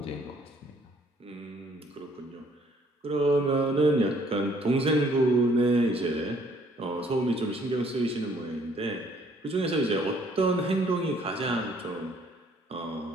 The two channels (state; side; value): normal; both; correlation 0.62